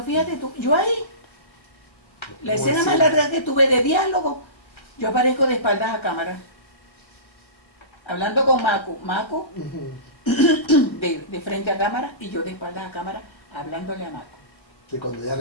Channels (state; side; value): late; right; 1.3 ms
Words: fíjate tú, yo ahí, la escena más larga que tuve de diálogo, yo aparezco de espaldas a cámara, hablando con Macu de frente a cámara y yo de espaldas a cámara hablándole a Macu. Que cuando ella